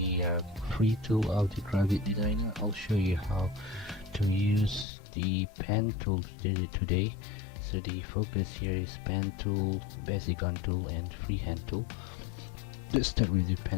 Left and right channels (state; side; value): drops out; right; at 4.9 s